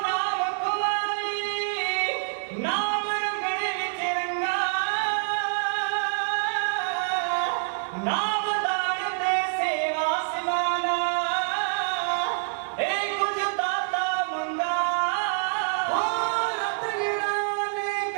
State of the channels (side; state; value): left; silent; digital silence